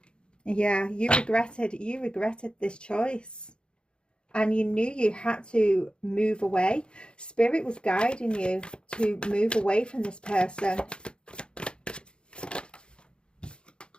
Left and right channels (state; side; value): late; right; 0.053 ms